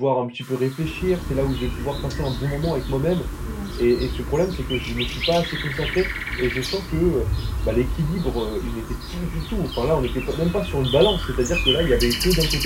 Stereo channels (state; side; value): identical; both; correlation 1.00